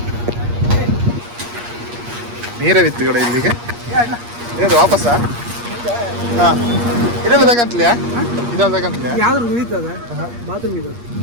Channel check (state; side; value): late; left; 8.5 ms